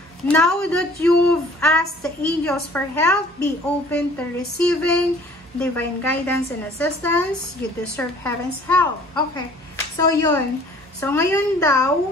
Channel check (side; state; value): both; normal; correlation 0.52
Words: Now that you've asked the angels for help, be open to receiving divine guidance and assistance. You deserve heaven's help. Okay. So, yun. So, ngayon